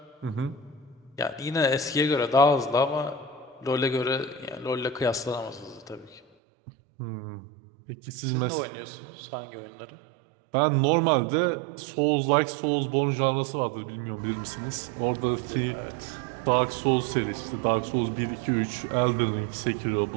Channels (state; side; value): drops out; left; at 6.2 s